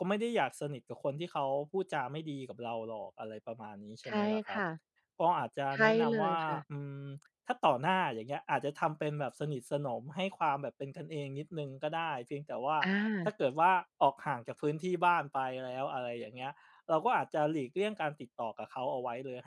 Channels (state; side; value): identical; both; correlation 1.00